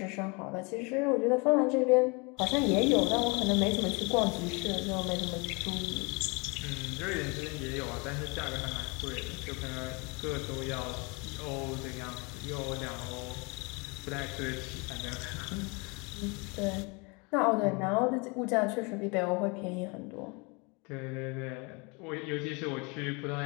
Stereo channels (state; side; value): quieter; right; 29.8 dB